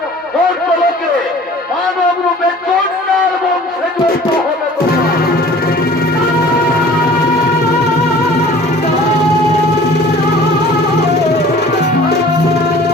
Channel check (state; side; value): normal; both; correlation 0.47